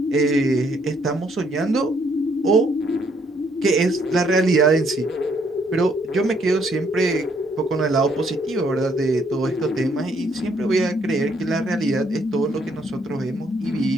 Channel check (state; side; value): normal; both; correlation 0.69